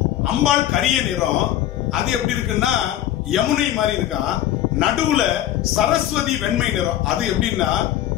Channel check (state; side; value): quieter; right; 12.6 dB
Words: அம்பாள் கரிய நிறம், அது எப்படி இருக்குன்னா யமுனை மாதிரி இருக்கான். நடுவுல சரஸ்வதி வெண்மை நிறம், அது எப்படின்னா